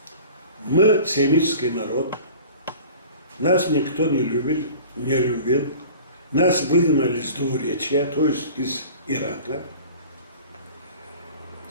мы семитский народ, нас никто не любил, нас выгнали с двуречья, то есть из Ирака.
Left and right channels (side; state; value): both; inverted; correlation -0.42